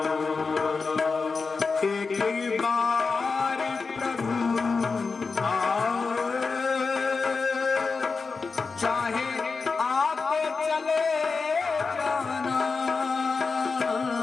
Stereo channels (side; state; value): right; quieter; 4.6 dB